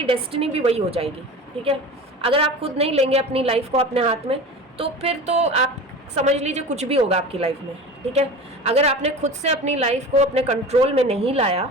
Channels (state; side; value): normal; both; correlation 0.34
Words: डेस्टिनी भी वही हो जाएगी, ठीक है। अगर आप खुद नहीं लेंगे अपनी लाइफ को अपने हाथ में, तो फिर तो आप समझ लीजिए कुछ भी होगा आपकी लाइफ में, ठीक है। अगर आपने खुद से अपनी लाइफ को अपने कंट्रोल में नहीं लाया,